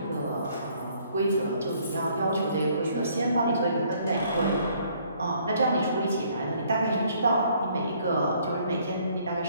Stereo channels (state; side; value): inverted; both; correlation -0.63